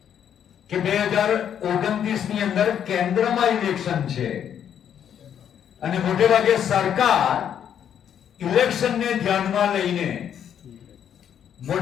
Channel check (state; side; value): quieter; right; 9.1 dB